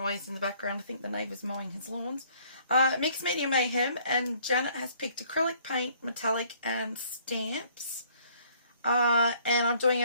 in the background, I think the neighbour's mowing his lawns. Mixed Media Mayhem, and Janet has picked acrylic paint, metallic and stamps. And I'm doing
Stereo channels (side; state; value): both; inverted; correlation -0.60